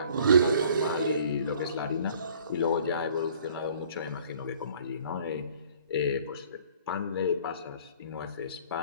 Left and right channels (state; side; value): inverted; both; correlation -0.54